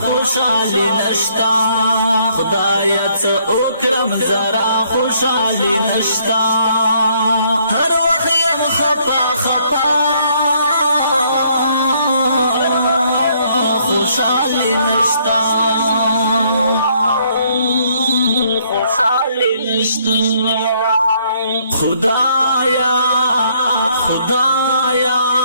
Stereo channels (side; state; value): both; inverted; correlation -0.68